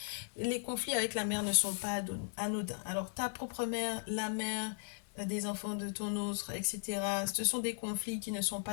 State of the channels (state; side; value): silent; right; digital silence